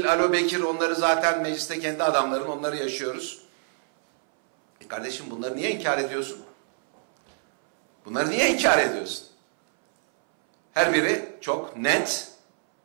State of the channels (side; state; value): left; silent; 62 dB below the other